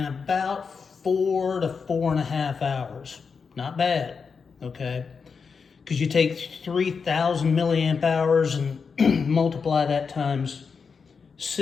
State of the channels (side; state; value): right; quieter; 5.5 dB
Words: about 4 to 4.5 hours. Not bad, okay? Because you take 3,000 milliamp hours and multiply that times